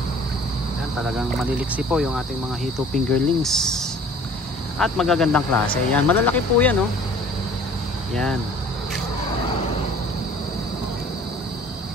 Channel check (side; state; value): both; normal; correlation 0.50